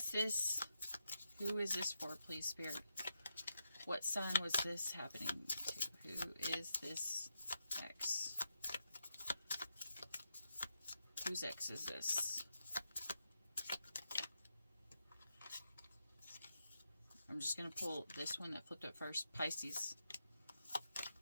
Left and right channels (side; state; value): both; inverted; correlation -0.85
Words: this for, please, Spirit? What sign was this happening to? Who is this ex? Whose ex is this? I'm just going to pull this one that flipped up first. Pisces.